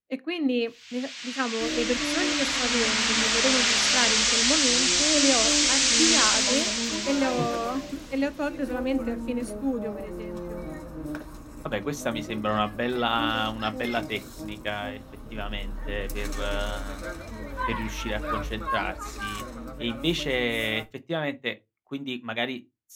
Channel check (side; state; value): both; identical; correlation 1.00